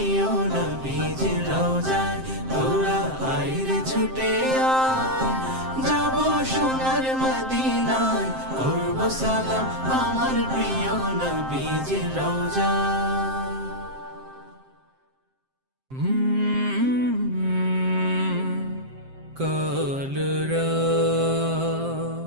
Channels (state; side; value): late; left; 7.6 ms